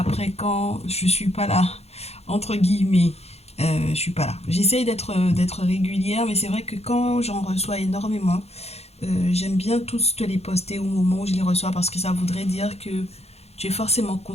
quand je suis pas là, entre guillemets, je suis pas là. J'essaye d'être régulière, mais c'est vrai que quand j'en reçois énormément, j'aime bien tous te les poster au moment où je les reçois parce que ça voudrait dire que tu es forcément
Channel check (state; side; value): late; right; 0.30 ms